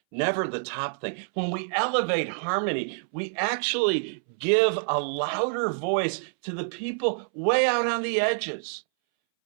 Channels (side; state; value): left; silent; 60 dB below the other